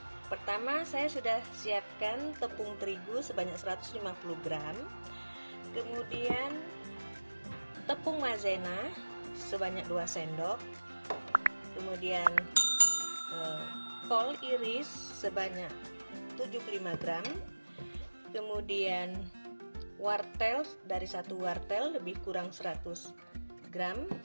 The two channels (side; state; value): both; inverted; correlation -1.00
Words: Pertama, saya sudah siapkan tepung terigu sebanyak 150 gram. Kemudian tepung maizena sebanyak 2 sendok, kemudian kol iris sebanyak 75 gram, kemudian wortel dari 1 wortel lebih kurang 100 gram,